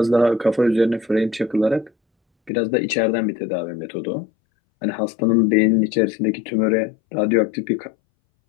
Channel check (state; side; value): drops out; right; at 2.5 s